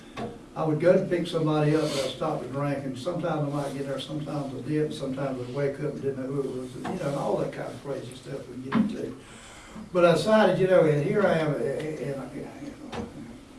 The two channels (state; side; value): identical; both; correlation 1.00